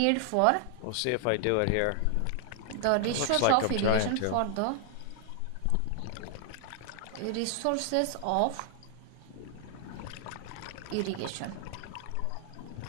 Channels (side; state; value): both; different; correlation 0.00